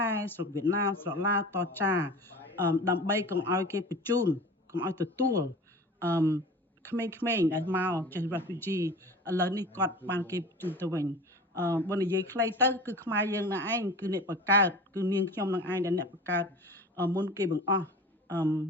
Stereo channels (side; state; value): both; normal; correlation 0.37